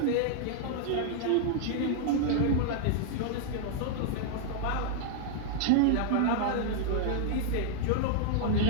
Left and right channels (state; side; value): different; both; correlation -0.01